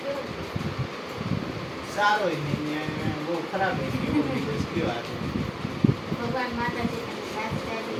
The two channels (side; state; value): both; identical; correlation 1.00